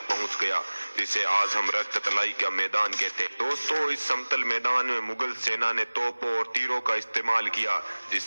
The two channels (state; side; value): inverted; both; correlation -1.00